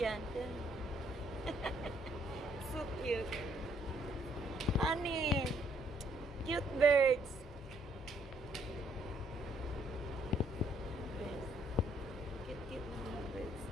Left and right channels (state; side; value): normal; both; correlation 0.68